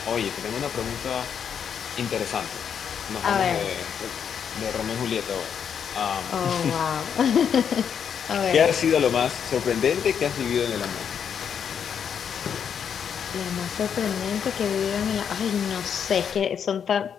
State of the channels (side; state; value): right; quieter; 7.7 dB